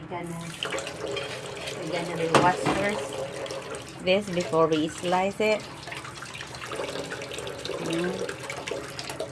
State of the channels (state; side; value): identical; both; correlation 1.00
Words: gonna rewash first this before we slice it.